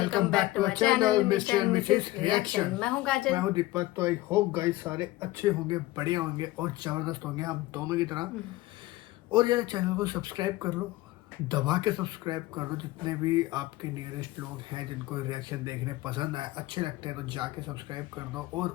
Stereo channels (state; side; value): quieter; right; 18.2 dB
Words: back to our channel mister and missus reaction. मैं हूँ काजल। मैं हूँ दीपक। तो आई होप गाइस सारे अच्छे होंगे, बढ़िया होंगे और जबरदस्त होंगे हम दोनों की तरह। और यार चैनल को सब्सक्राइब कर लो, दबा के सब्सक्राइब कर लो। जितने भी आपके नियरेस्ट लोग हैं जिनको रिएक्शन देखने पसंद आए, अच्छे लगते हैं, तो जाके सब्सक्राइब कर दो और